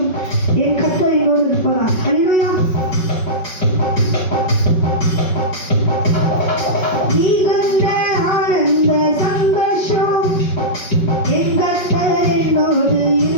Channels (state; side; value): late; right; 5.4 ms